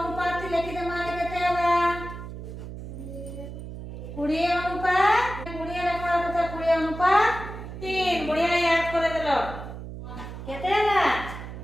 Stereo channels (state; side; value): noise; right; hum, 10 dB below the sound